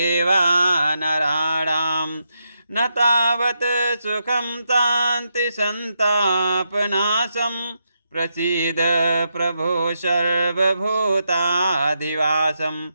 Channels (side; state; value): both; inverted; correlation -0.83